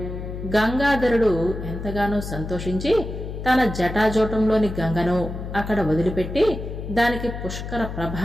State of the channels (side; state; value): left; noise; hum, 7 dB below the sound